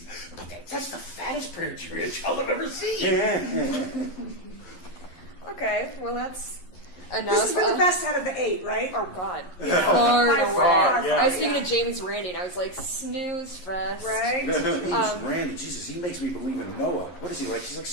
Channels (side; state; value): right; late; 11 ms